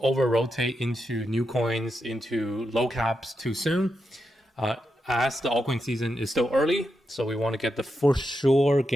rotate into new coins, into low caps too soon. As the altcoin season is still early, so we want to get the for sure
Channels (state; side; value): normal; both; correlation 0.86